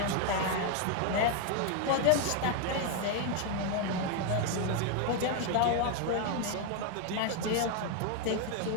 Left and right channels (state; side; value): different; both; correlation 0.01